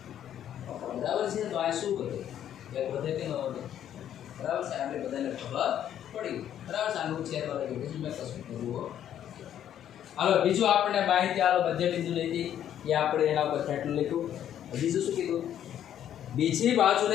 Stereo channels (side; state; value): right; quieter; 10.4 dB